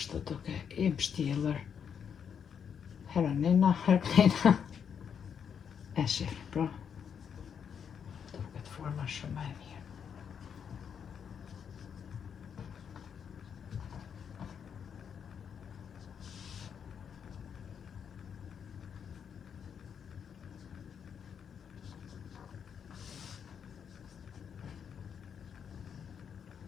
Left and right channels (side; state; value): right; quieter; 7.5 dB